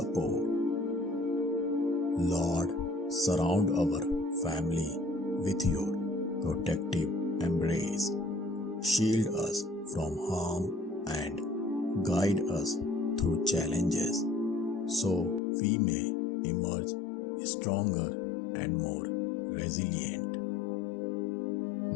Lord, surround our family with your protective embrace. Shield us from harm and guide us through challenges so we may emerge stronger and more resilient.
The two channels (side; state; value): right; drops out; at 15.4 s